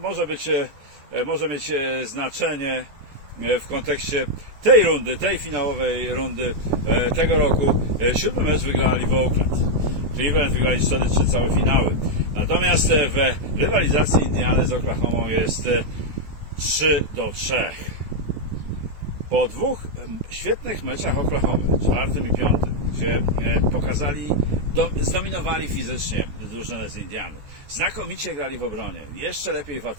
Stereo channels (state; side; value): late; left; 14 ms